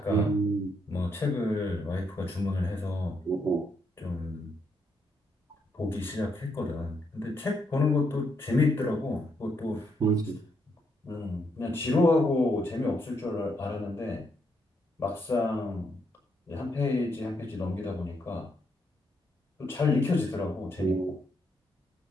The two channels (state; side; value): normal; both; correlation 0.77